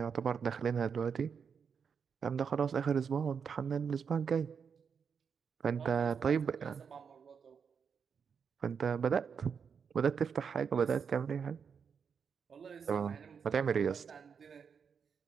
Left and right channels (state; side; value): quieter; left; 6.5 dB